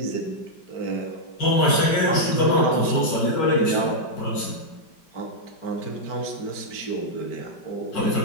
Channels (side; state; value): right; late; 5.1 ms